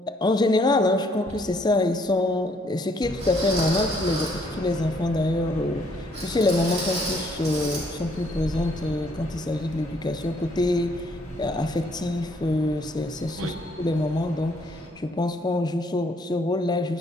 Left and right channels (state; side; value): normal; both; correlation 0.67